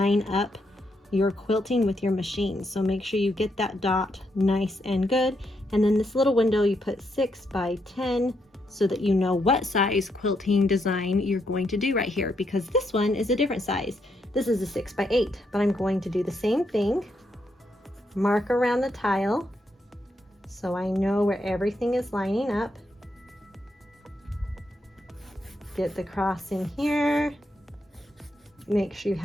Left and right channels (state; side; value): normal; both; correlation 0.79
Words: up your quilting with your machine. So make sure you get that dot nice and good. And then this little window you put 6x10 so that you know what size quilting design you're going to do right here, because this one is a different size. This is a 6x8, but I'm going to do the same thing. Mark around the tile so I know where everything is lining up. Get the cross in here. Make sure you